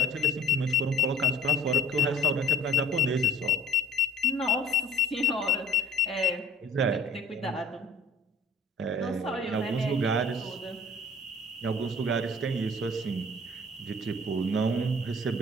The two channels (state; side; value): normal; both; correlation 0.50